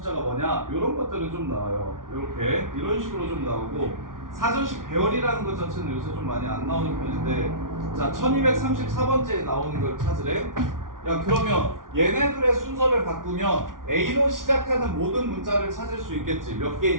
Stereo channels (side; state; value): left; late; 0.89 ms